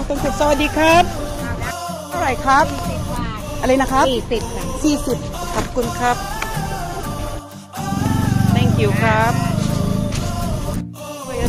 Sawadee, Kap. Alright, Kap. Alay na, Kap? Sisip. Kapkun, Kap. Thank you, Kap. Ayan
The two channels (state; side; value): identical; both; correlation 1.00